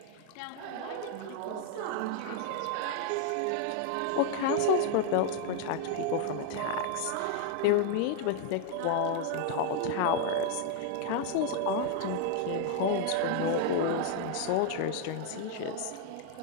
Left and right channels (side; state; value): both; different; correlation 0.00